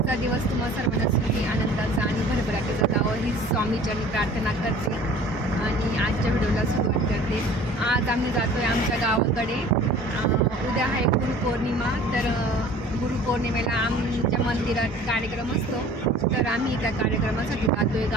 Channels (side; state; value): both; normal; correlation 0.47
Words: दिवस तुम्हा सर्वांना सुखी आनंदाचा आणि भरभराटीचा जावं ही स्वामीचरणी प्रार्थना करते आणि आजच्या व्हिडिओला सुरुवात करते. आज आम्ही जातो आहे आमच्या गावाकडे. उद्या आहे गुरुपौर्णिमा, तर गुरुपौर्णिमेला आमच्या मंदिरात कार्यक्रम असतो, तर आम्ही त्या कार्यक्रमासाठी जातो आहे